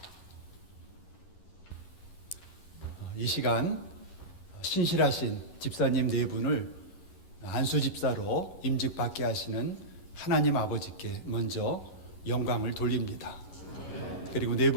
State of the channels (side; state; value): right; late; 11 ms